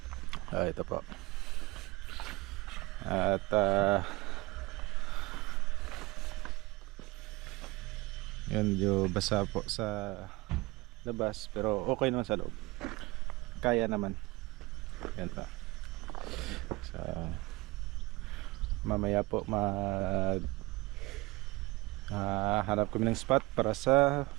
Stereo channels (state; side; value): quieter; left; 22.8 dB